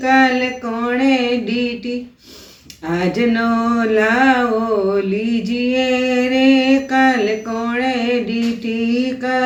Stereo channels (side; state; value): both; identical; correlation 1.00